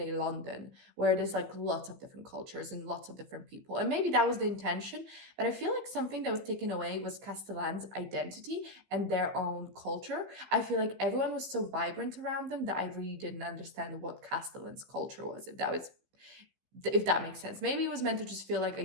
London, where there's like lots of different cultures and lots of different people, and maybe that was the intention. But I feel like something that was taken away was Castellan's identity and their own culture. I feel like everyone was so vibrant around them that I really didn't understand what Castellan's culture was, if that makes sense. Maybe it was meant to just feel like a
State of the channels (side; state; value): left; late; 15 ms